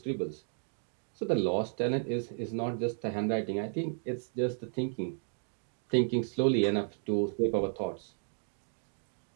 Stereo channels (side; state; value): left; silent; digital silence